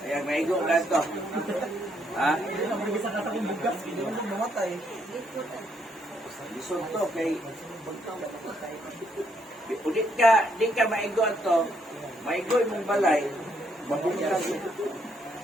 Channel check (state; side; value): normal; both; correlation 0.73